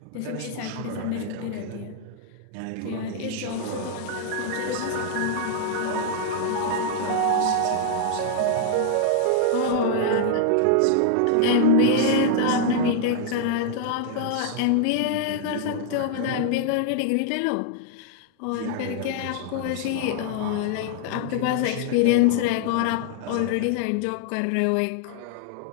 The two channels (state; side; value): different; both; correlation -0.01